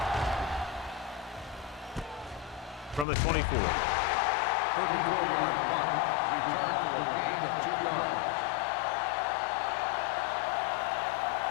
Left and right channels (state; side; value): drops out; right; at 3.1 s